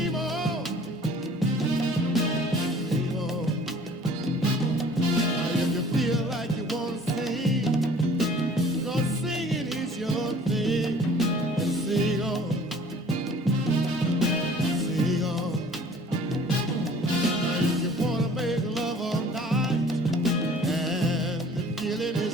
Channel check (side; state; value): both; normal; correlation 0.50